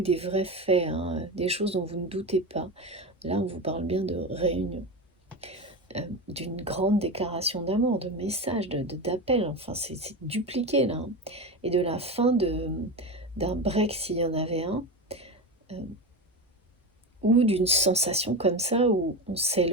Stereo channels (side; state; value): both; normal; correlation 0.21